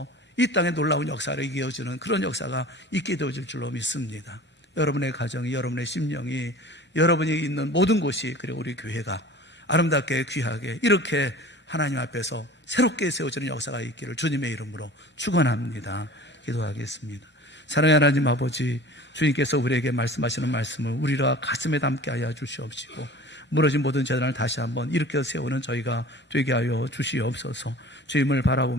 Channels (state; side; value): normal; both; correlation 0.42